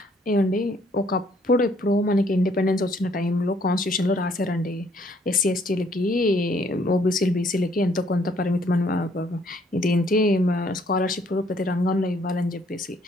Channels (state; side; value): normal; both; correlation 0.65